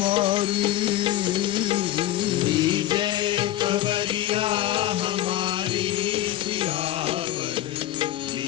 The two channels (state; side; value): quieter; right; 13.6 dB